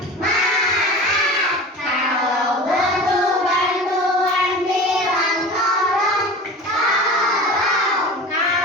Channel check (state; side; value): normal; both; correlation 0.35